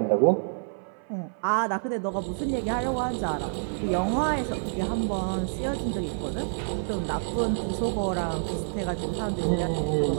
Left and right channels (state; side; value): silent; left; 57 dB below the other